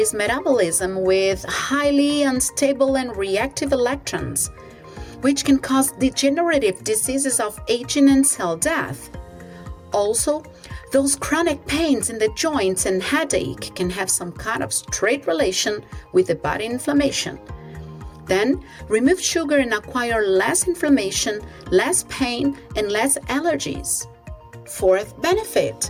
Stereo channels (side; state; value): both; identical; correlation 1.00